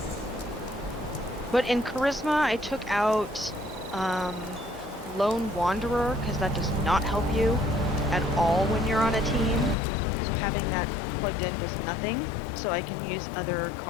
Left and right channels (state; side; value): drops out; right; at 9.8 s